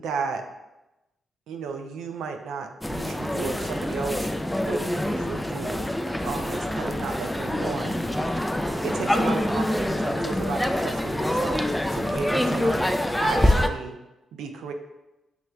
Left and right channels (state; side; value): normal; both; correlation 0.91